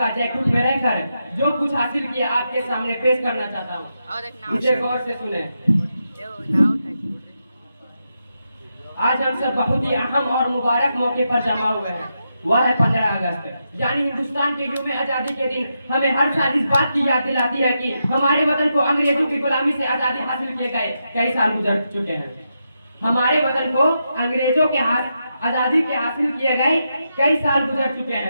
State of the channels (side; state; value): both; inverted; correlation -0.85